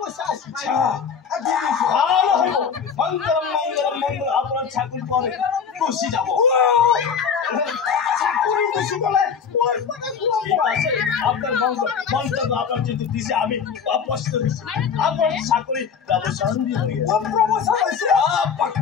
আছে ভালো হইব মঙ্গলম মঙ্গলম মঙ্গল আপনার চাকরি পরে খুশি যাবো চাকৰি গুচি গ'লে ঠিক আছে আপনাৰ মঙ্গল আপনাৰ যেহেতু দিছে আমি অপস্ত হয়েছি আপনাৰ চাকৰি প্ৰমোশন দিয়ে প্ৰমোচন হৈছে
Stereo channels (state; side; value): quieter; right; 6.7 dB